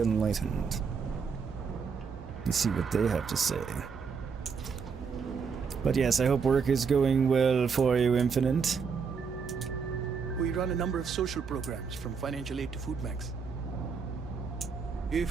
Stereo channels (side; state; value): left; quieter; 5.8 dB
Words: Enlightened and see what they have to say. But yes, I hope work is going well for you, Infinite. We run a number of social programs, from financial aid to food banks.